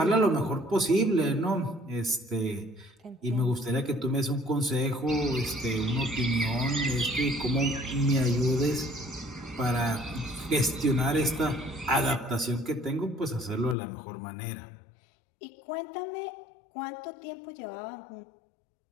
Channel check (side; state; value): right; drops out; at 13.8 s